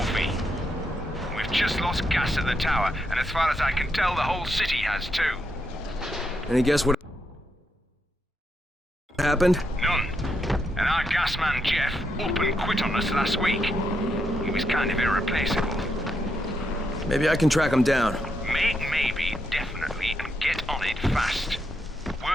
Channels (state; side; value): normal; both; correlation 0.81